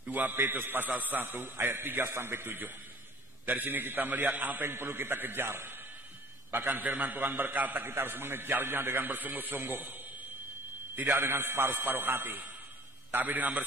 2 Petrus pasal 1 ayat 3 sampai 7. Dari sini kita melihat apa yang perlu kita kejar. Bahkan firman Tuhan berkata kita harus mengejarnya dengan bersungguh-sungguh. Tidak dengan separuh-separuh hati, tapi dengan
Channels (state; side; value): normal; both; correlation 0.48